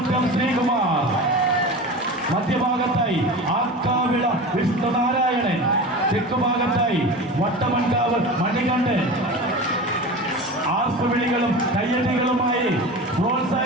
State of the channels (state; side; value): normal; both; correlation 0.31